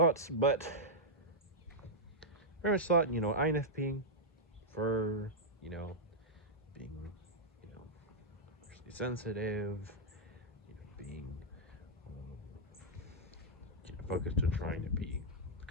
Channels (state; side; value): normal; both; correlation -0.07